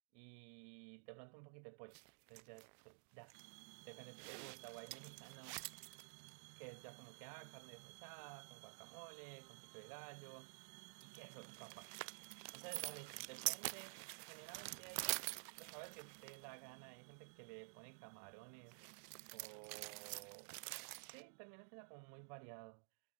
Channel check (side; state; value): left; silent; digital silence